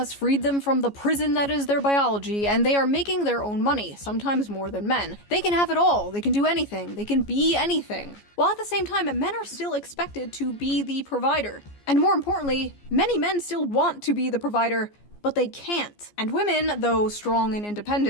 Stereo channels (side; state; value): right; late; 14 ms